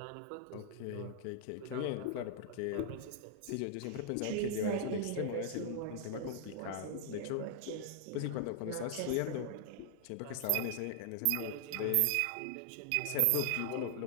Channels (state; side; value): different; both; correlation -0.01